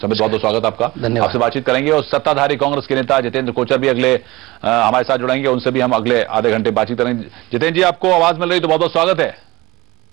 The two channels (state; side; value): quieter; left; 20.6 dB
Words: बहुत बहुत स्वागत आपका। धन्यवाद। आपसे बातचीत करेंगे और सत्ताधारी कांग्रेस के नेता जितेंद्र कोचर भी अगले हमारे साथ जुड़ेंगे। उनसे भी हम अगले आधे घंटे बातचीत करेंगे। जितेंद्र जी, आपको आवाज मिल रही तो बहुत बहुत स्वागत है।